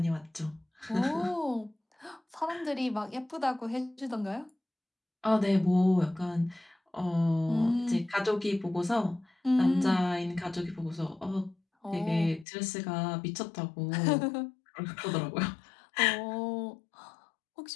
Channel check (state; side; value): drops out; right; at 12.5 s